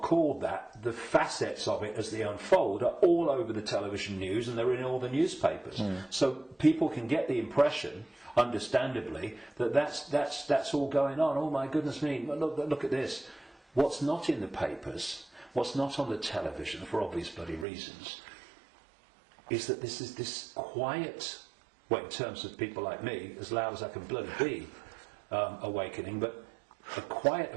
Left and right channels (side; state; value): left; drops out; at 17.7 s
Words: called that, the facets of it as they unfold are all over the television news and they're in all the newspapers. So people can get the impression, understandably, that that's all going on. Oh my goodness me, look at this. What's not in the papers, what's not on the television, for obvious bloody reasons, is that this is this quiet, well, in terms of people like me, as loud as I can bloody be, awakening, but a quiet